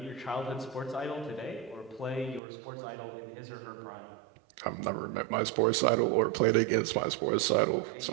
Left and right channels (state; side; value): drops out; left; at 2.4 s